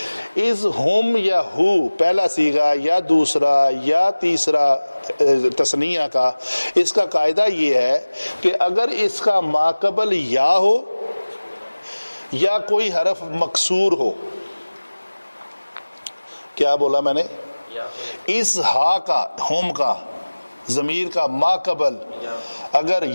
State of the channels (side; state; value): both; inverted; correlation -1.00